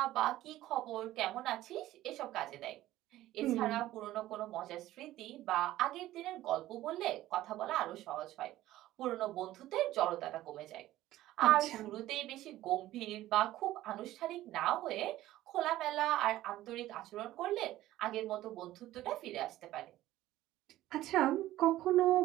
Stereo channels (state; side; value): quieter; left; 15.0 dB